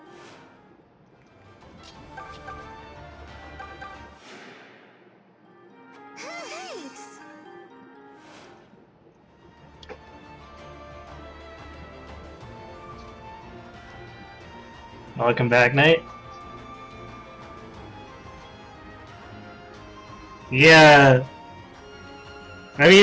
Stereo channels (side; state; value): both; identical; correlation 1.00